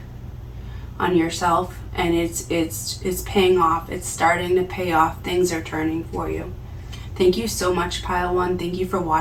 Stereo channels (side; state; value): both; identical; correlation 1.00